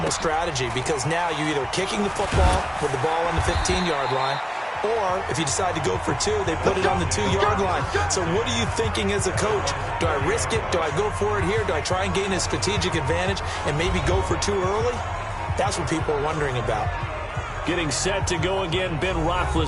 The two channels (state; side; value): identical; both; correlation 1.00